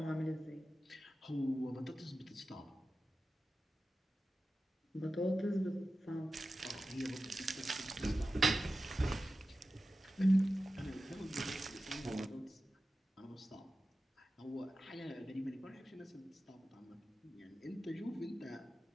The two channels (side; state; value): both; normal; correlation 0.93